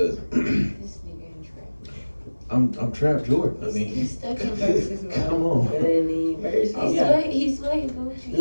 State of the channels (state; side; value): inverted; both; correlation -1.00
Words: I'm Trap Jordan. I mean, He's stuck in verses, man. come on. It ain't even verses. He's way